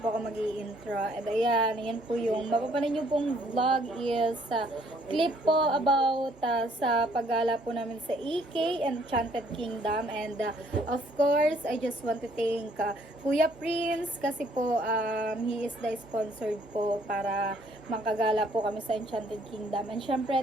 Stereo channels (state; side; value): normal; both; correlation 0.64